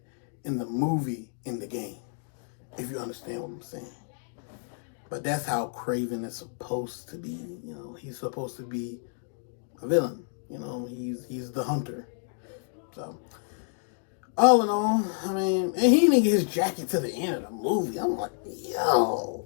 in the movie, in the game. If you understand what I'm saying. But that's how Kraven is supposed to be. You know, he's supposed to be a villain. You know, he's the hunter. So, all in all, I mean, and he didn't get his jacket to the end of the movie. I'm like, yo,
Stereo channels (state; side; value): silent; right; digital silence